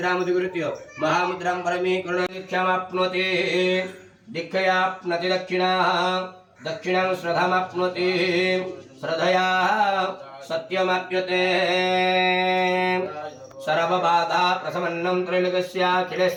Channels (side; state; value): both; identical; correlation 1.00